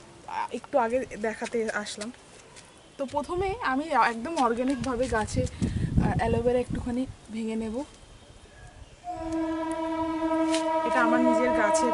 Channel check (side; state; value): both; identical; correlation 1.00